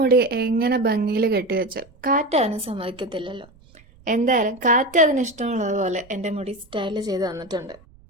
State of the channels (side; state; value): right; noise; rumble, 27 dB below the sound